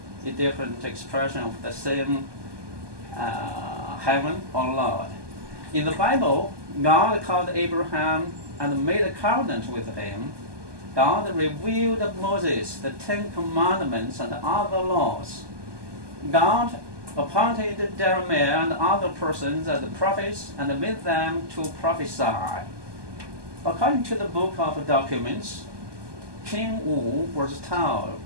a different expression of the same heaven or Lord. In the Bible, God called Abraham and made a covenant with him. God revealed to Moses the Ten Commandments and other laws. God appointed Jeremiah and other persons as prophets and made them to prophesy. According to the book of documents, King Wu was told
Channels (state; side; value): late; left; 1.2 ms